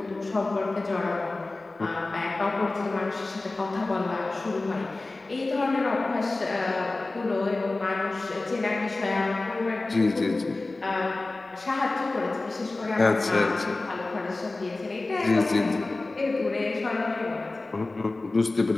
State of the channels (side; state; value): right; quieter; 3.2 dB